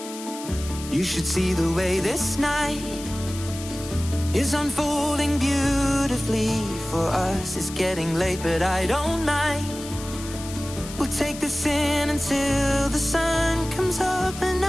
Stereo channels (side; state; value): left; noise; hiss, 13 dB below the sound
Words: You should see the way this night is unfolding beautifully for us. It's getting late, but I don't mind. We'll take this in until the sun comes up, and